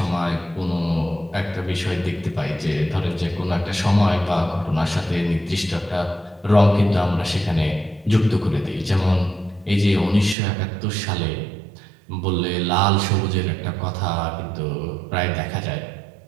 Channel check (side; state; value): left; drops out; at 10.4 s